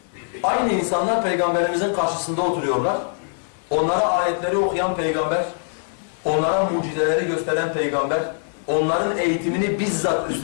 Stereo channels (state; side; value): silent; right; digital silence